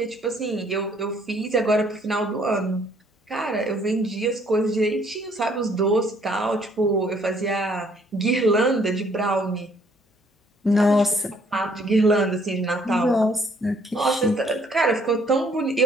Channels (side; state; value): both; normal; correlation 0.64